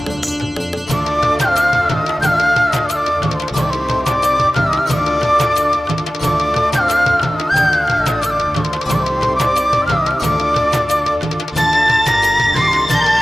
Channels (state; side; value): normal; both; correlation 0.96